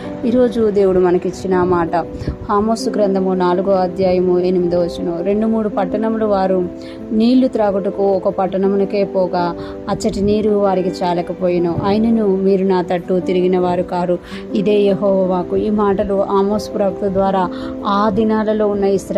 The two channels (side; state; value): both; identical; correlation 1.00